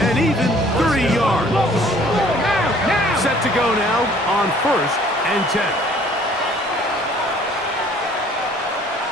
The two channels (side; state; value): both; normal; correlation 0.56